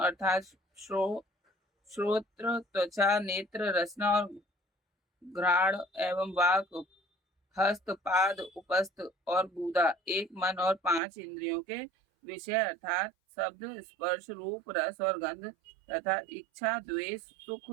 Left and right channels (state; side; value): drops out; left; at 11.0 s